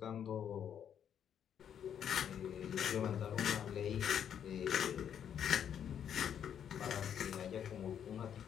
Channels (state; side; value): quieter; right; 8.9 dB